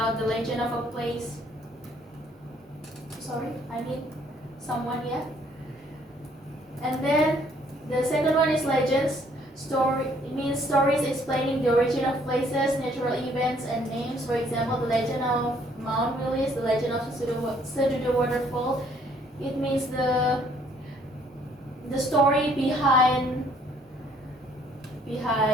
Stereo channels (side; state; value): both; normal; correlation 0.63